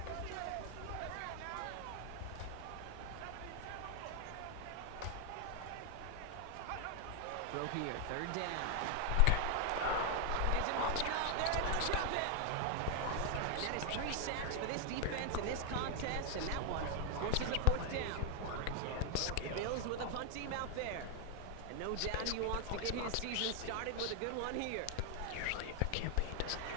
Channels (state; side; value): different; both; correlation 0.00